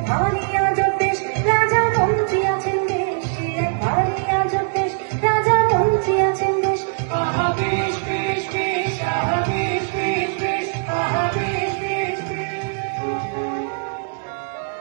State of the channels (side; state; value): left; silent; 65 dB below the other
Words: ভারী আজব দেশ, রাজা মন্ত্রী আছেন বেশ। সে এক ভারী আজব দেশ, রাজা মন্ত্রী আছেন বেশ। আহা বেশ বেশ বেশ, আহা বেশ বেশ বেশ, আহা বেশ বেশ বেশ।